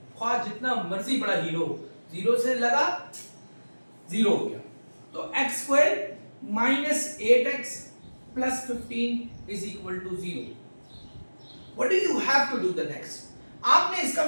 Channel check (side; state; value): both; inverted; correlation -1.00